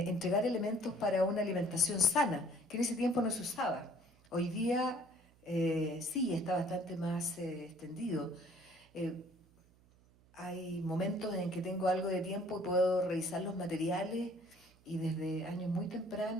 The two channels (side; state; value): right; noise; hum, 29 dB below the sound